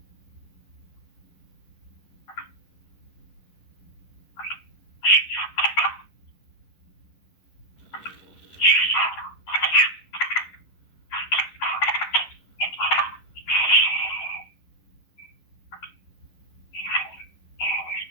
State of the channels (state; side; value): late; right; 10 ms